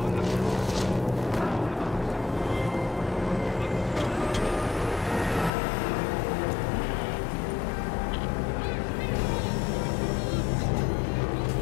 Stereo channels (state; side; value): drops out; right; at 5.5 s